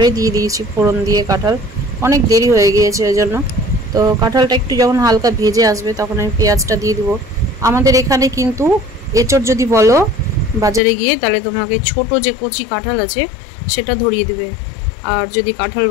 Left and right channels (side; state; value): right; drops out; at 10.8 s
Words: দিয়ে দিয়েছি ফোড়ন দিয়ে কাঁঠাল, অনেক দেরি হয়ে গিয়েছে ওই জন্য। তো কাঁঠালটা একটু যখন হালকা ভেজে আসবে তখন আমি পেঁয়াজটা দিয়ে দেবো। আমাদের এখানে কিন্তু এঁচড় যদি বলো বাজারে গিয়ে, তাহলে তোমাকে ছোট যে কচি কাঁঠাল আছে সেটা ধরিয়ে দেবে। আর যদি কাঁঠাল